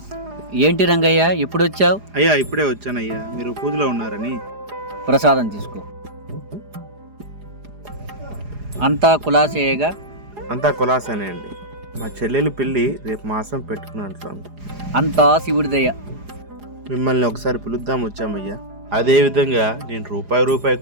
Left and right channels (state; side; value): late; left; 4.9 ms